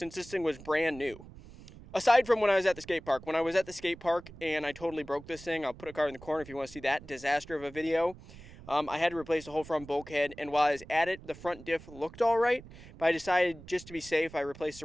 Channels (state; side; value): noise; right; rumble, 18 dB below the sound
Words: this thing was brand new. Aside from when I was at the skate park. When I was at the skate park and I totally broke this thing, I'll put a card in the corner if you want to see that disaster of a video. I had to replace the whole front bulkhead, and while I was at it, the front diff looked all right, but I decided just to be safe, I replaced the